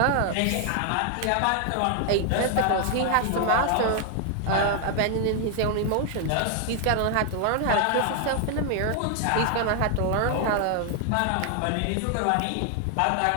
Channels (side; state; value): both; different; correlation 0.00